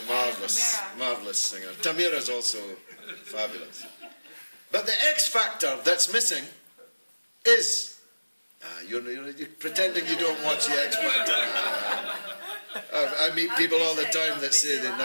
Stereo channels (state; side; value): inverted; both; correlation -1.00